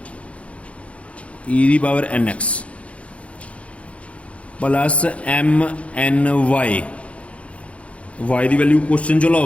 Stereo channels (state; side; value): late; right; 0.063 ms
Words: e दी power n x plus m n y, y की वैल्यू क्वेश्चन चो